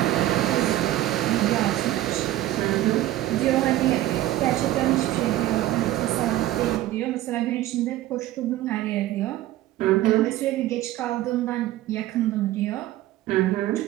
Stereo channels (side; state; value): left; quieter; 14.8 dB